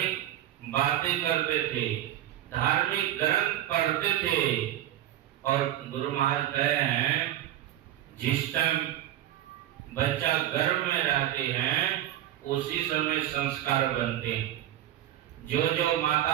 बातें करते थे, धार्मिक ग्रंथ पढ़ते थे, और गुरु महाराज कहे हैं जिस टाइम बच्चा गर्भ में रहते हैं उसी समय संस्कार बनते हैं। जो जो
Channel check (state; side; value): quieter; left; 12.9 dB